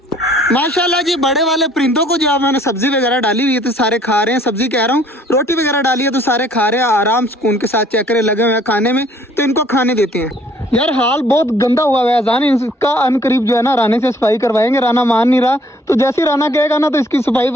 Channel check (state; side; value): normal; both; correlation 0.59